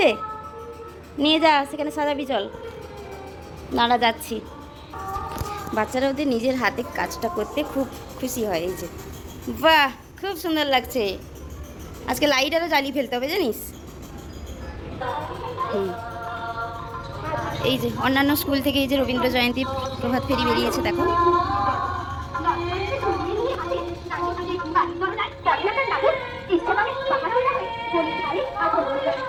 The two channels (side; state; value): both; identical; correlation 1.00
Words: নিয়ে যা, সেখানে সাজাবি, চল। নাড়া যাচ্ছি। বাচ্চারা ওদের নিজের হাতে কাজটা করতে খুব খুশি হয়। এই যে বাহ, খুব সুন্দর লাগছে। আজকে লাইট আরও জ্বালিয়ে ফেলতে হবে জানিস। এই যে অন্যান্য স্কুল থেকে এই যে রবীন্দ্র জয়ন্তী প্রভাত ফেরি বেরিয়েছে, দেখো।